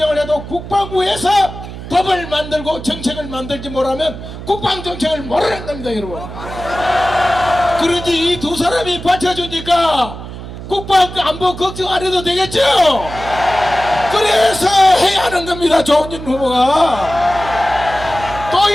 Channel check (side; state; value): right; noise; hum, 11 dB below the sound